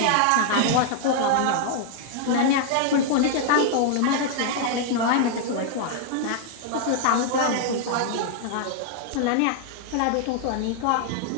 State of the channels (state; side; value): different; both; correlation 0.00